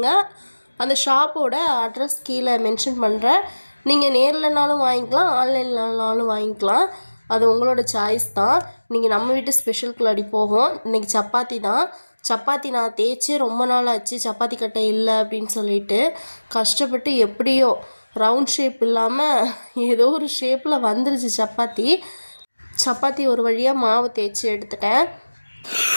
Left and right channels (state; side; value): inverted; both; correlation -1.00